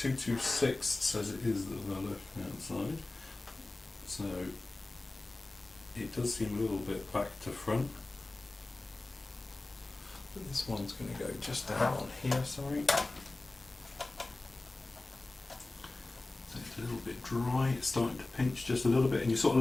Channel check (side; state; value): right; quieter; 3.0 dB